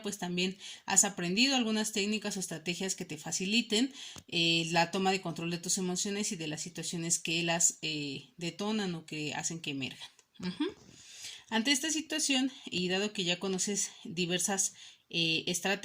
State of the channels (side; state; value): both; identical; correlation 1.00